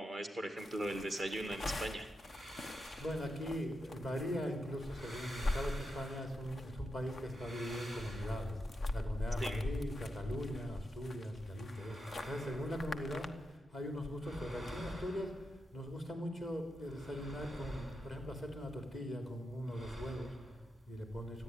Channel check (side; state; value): both; normal; correlation 0.86